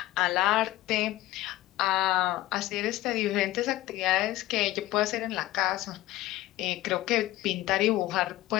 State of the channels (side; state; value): right; quieter; 16.4 dB